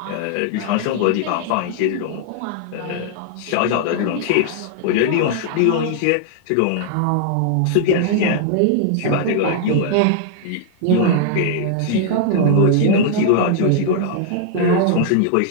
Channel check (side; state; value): both; different; correlation -0.01